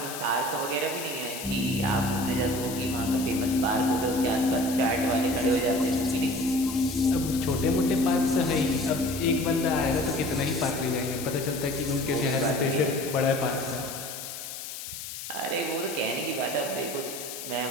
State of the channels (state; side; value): noise; left; hiss, 9 dB below the sound